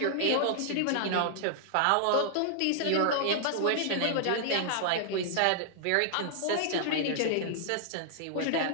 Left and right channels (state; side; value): different; both; correlation -0.01